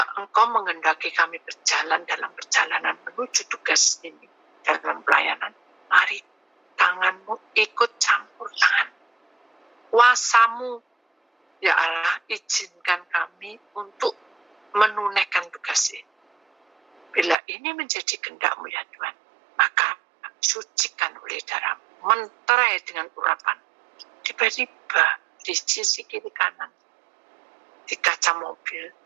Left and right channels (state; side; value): drops out; left; at 17.4 s